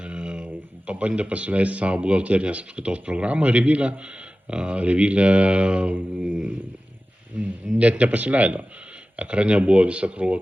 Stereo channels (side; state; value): both; normal; correlation 0.96